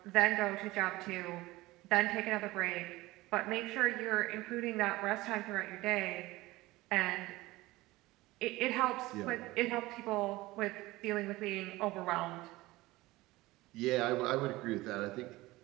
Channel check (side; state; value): left; quieter; 19.4 dB